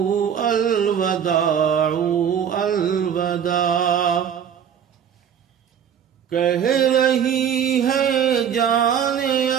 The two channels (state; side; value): quieter; left; 8.5 dB